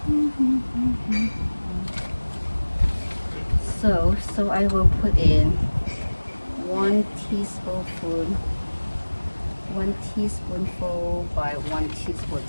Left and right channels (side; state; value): both; inverted; correlation -1.00